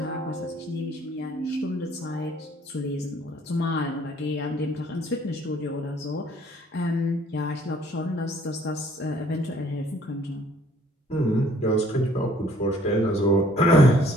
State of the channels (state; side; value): normal; both; correlation 0.59